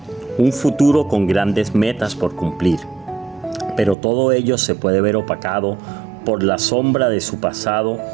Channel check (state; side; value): drops out; left; at 4.0 s